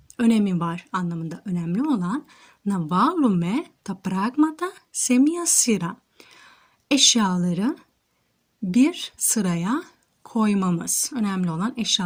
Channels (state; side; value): identical; both; correlation 1.00